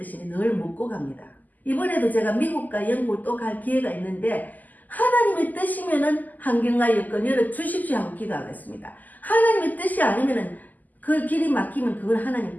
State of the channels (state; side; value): late; right; 0.082 ms